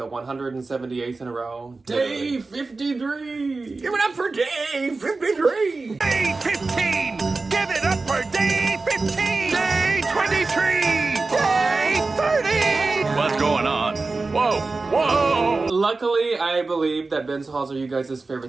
178th in a row. Day 53! Give it up for day 53! Day 15! Give it up for day 15! Day 23! Day 30! What's going on? Whoa! Whoa! Luckily, I believe that bins hauls are you guys'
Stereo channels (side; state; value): left; quieter; 3.7 dB